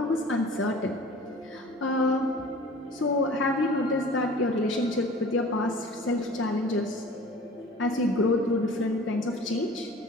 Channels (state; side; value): normal; both; correlation 0.44